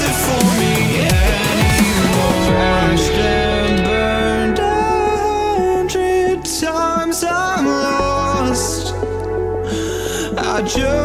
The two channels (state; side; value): identical; both; correlation 1.00